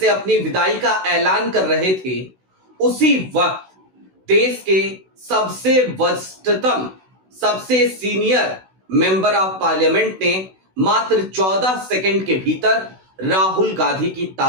अपनी विदाई का ऐलान कर रहे थे, उसी वक्त देश के सबसे वरिष्ठतम, सबसे सीनियर मेंबर ऑफ पार्लियामेंट ने मात्र 14 सेकंड के भीतर राहुल गांधी की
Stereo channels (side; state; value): left; late; 16 ms